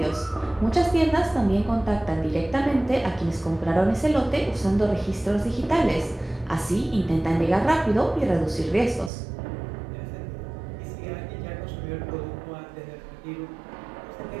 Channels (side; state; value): left; drops out; at 9.1 s